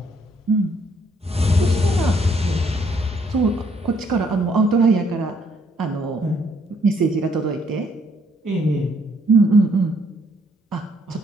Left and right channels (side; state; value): both; normal; correlation 0.68